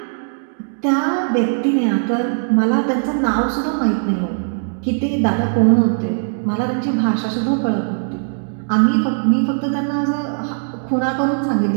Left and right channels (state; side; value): silent; left; digital silence